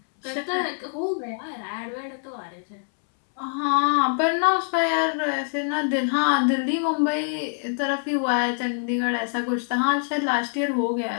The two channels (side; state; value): right; silent; 62 dB below the other